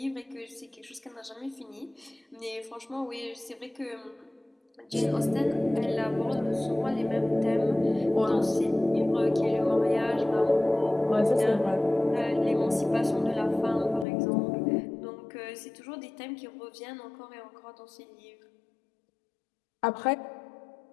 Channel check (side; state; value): right; drops out; at 14.1 s